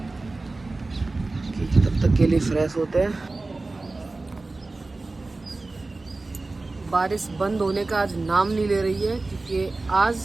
कि तब तक के लिए फ्रेश होते हैं। बारिश बंद होने का आज नाम नहीं ले रही है, क्योंकि आज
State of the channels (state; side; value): quieter; left; 3.3 dB